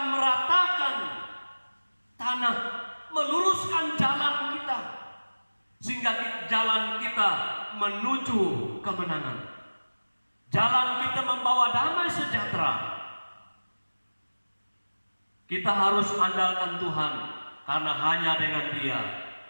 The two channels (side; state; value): both; inverted; correlation -1.00